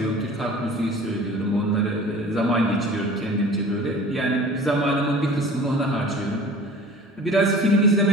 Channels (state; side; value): normal; both; correlation 0.43